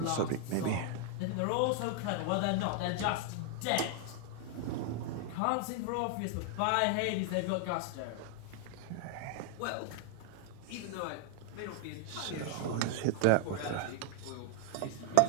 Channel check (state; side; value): different; both; correlation 0.00